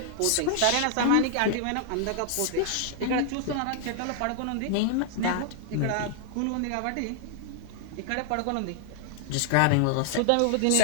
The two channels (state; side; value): different; both; correlation -0.01